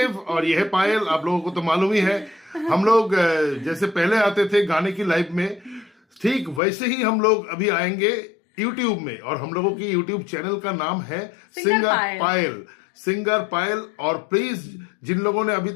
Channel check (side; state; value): right; drops out; at 6.6 s